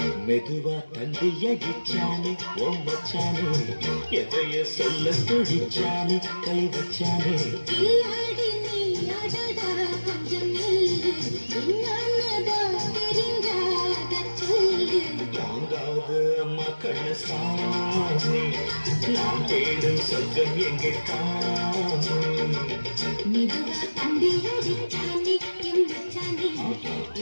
மெதுவா தந்தி அடிச்சானே ஓ மச்சானே எதைய சொல்ல துடிச்சானே கை வச்சானே கில்லாடி நீ அடடா கொஞ்சம் நில்லு என்னன்னதா தெரிஞ்சாத சொல்லு தாங்காது அம்மா கண்ண சாமி நான் தேடும் சொர்க்கம் எங்கே காமி மெதுவா தந்தி அடிச்சானே எம் மச்சானே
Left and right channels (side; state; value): both; inverted; correlation -1.00